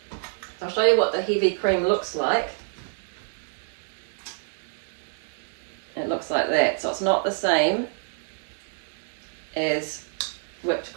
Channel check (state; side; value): silent; left; 59 dB below the other